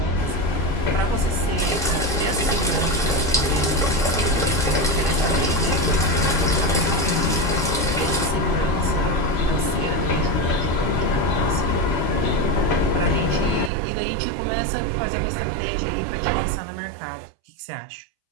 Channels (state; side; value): drops out; left; at 13.7 s